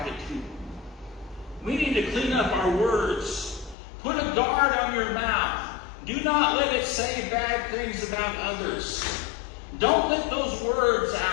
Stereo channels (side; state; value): right; drops out; at 3.8 s